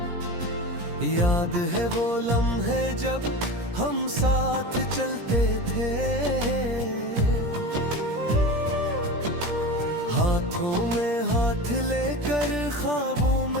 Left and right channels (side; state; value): left; late; 17 ms